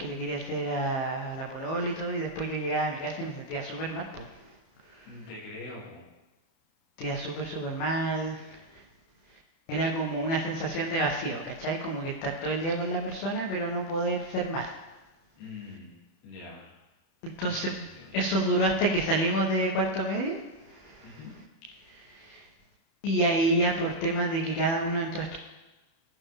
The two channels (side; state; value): right; late; 30 ms